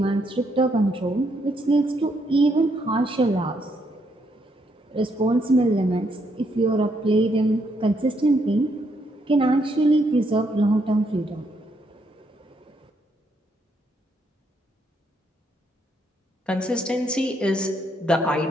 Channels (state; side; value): normal; both; correlation 0.75